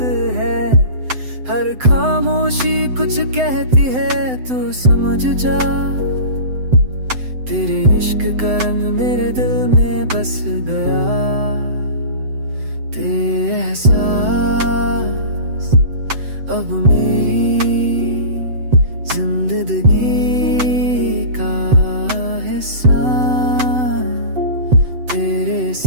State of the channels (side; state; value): left; late; 7.9 ms